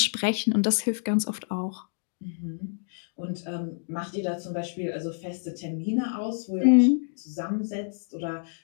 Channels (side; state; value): right; silent; digital silence